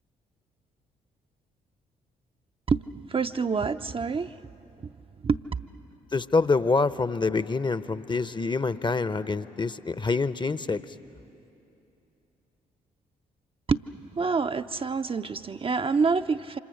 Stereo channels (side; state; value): both; normal; correlation 0.70